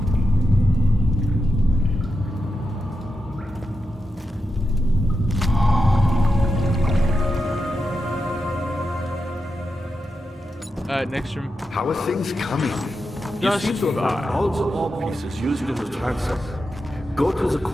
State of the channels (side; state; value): both; normal; correlation 0.88